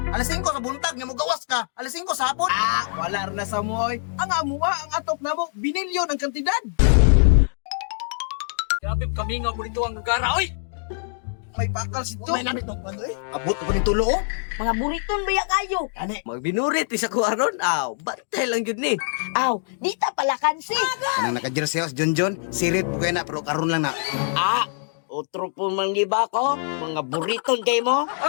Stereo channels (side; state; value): right; silent; digital silence